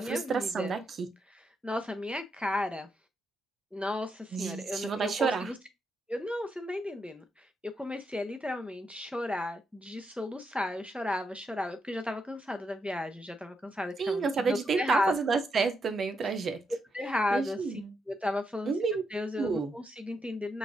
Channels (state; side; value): normal; both; correlation 0.82